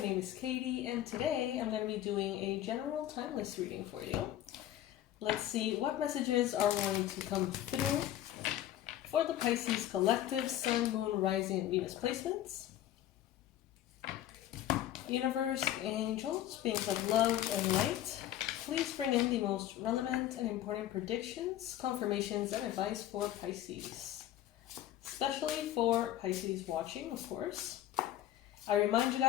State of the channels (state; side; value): quieter; right; 12.5 dB